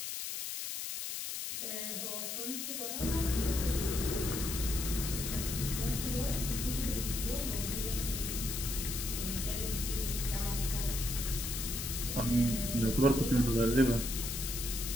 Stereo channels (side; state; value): left; noise; hiss, 4 dB below the sound